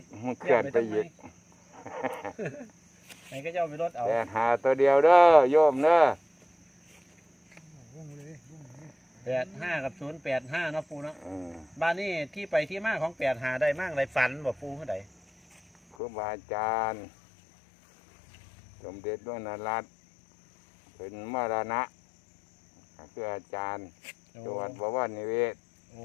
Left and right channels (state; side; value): drops out; right; at 16.0 s